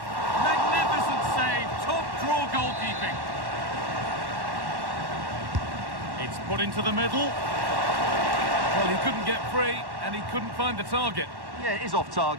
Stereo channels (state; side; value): late; left; 1.1 ms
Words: Magnificent save. Top draw goalkeeping. It's put into the middle. Well, he couldn't get free, and he couldn't find the target. Yeah, it is off